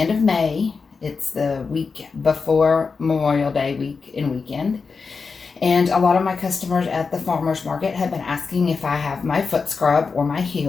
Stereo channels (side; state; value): right; quieter; 4.9 dB